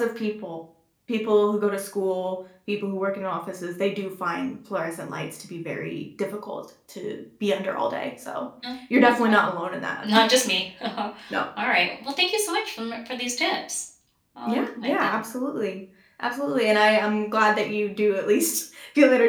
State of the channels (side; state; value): both; identical; correlation 1.00